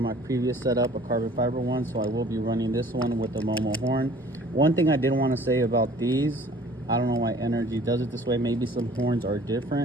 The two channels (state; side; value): normal; both; correlation 0.52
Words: my previous setup, a carbon fiber one, so I will be running this one with the Momo horn. One thing I did want to say about these, I don't know why NRG does it this way. Maybe some horns are